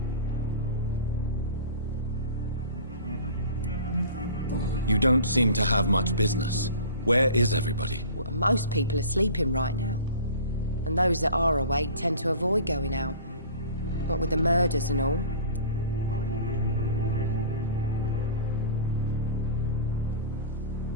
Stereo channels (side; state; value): both; inverted; correlation -0.40